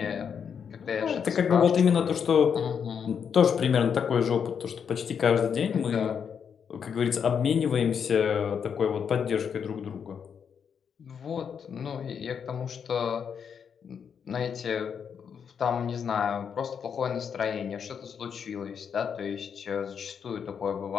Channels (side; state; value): right; quieter; 7.2 dB